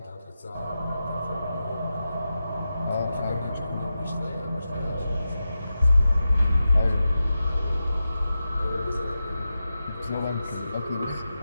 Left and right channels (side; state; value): both; inverted; correlation -0.91